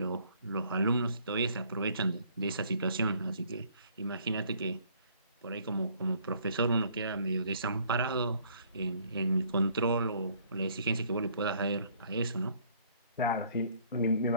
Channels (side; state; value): both; inverted; correlation -0.61